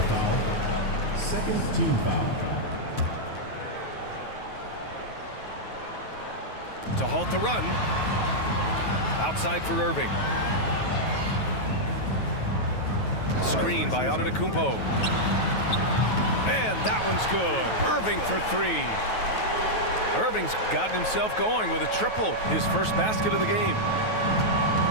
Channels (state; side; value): late; right; 9.3 ms